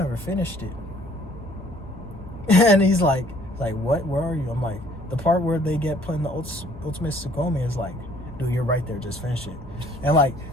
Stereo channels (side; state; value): both; normal; correlation 0.58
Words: finished it. And he's like, what? Where are you? I'm like, the part where they get put in the Ultimate Tsukuyomi is like, dude, you're right there. Just finish it. And like,